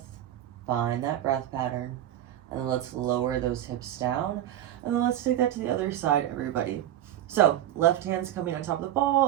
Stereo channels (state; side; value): quieter; left; 12.1 dB